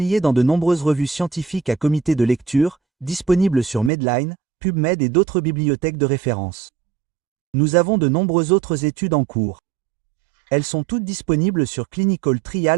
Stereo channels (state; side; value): drops out; left; at 3.9 s